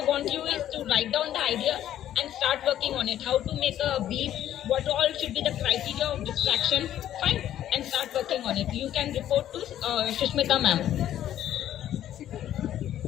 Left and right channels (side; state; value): right; quieter; 11.7 dB